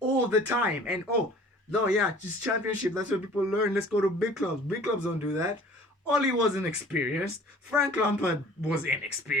the time. And oh, no, yeah, just championship. That's what people learn. Let's go to big clubs. Big clubs don't do that. Ollie was inexperienced. Frank Lampard was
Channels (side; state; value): both; normal; correlation 0.48